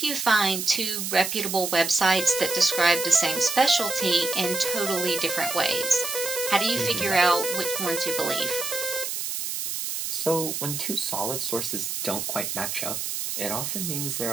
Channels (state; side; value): noise; right; hiss, 3 dB below the sound